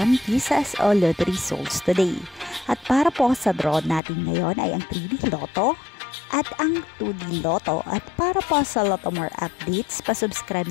Kisas o Lottery Results today. At para po sa draw natin ngayon ay ang 3D Lotto at ang 2D Lotto. At para po sa Lotto More updates, pasubscribe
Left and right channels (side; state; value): right; drops out; at 4.0 s